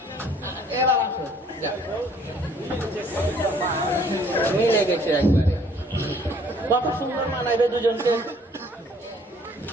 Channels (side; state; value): both; normal; correlation 0.59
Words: এবার আসো, যাও। মিলে গেছে একবারে, কত সুন্দর মানাইবে দুজনকে।